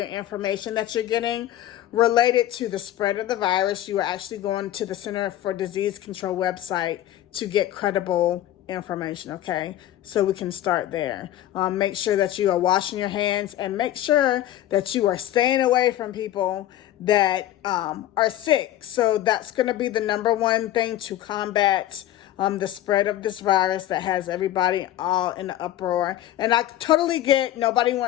information that you're getting related to the spread of the virus, you are actually going to the Center for Disease Control website to get credible information, okay? So we can start there. Make sure that you are washing your hands and make sure that you are staying away from people that are sick. So that's going to be the number one thing to combat the spread of this virus that has everybody all in the uproar. And I totally get nobody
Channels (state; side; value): quieter; right; 13.2 dB